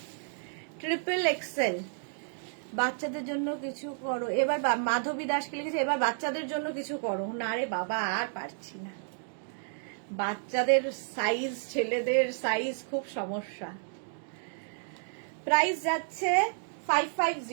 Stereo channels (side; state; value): left; silent; digital silence